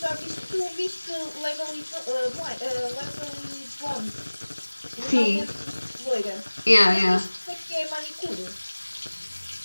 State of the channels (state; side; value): inverted; both; correlation -1.00